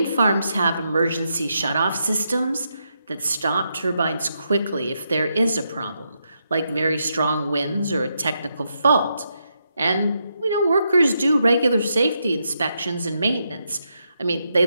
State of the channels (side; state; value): both; inverted; correlation -0.82